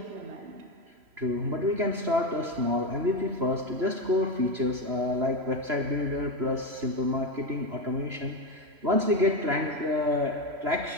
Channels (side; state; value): left; late; 3.0 ms